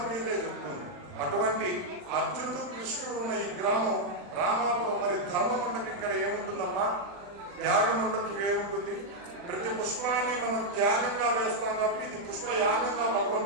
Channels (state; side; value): late; left; 40 ms